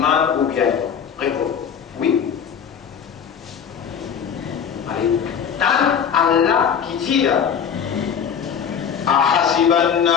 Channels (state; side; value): quieter; right; 7.6 dB